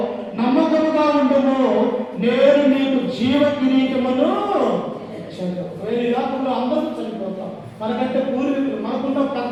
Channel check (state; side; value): identical; both; correlation 1.00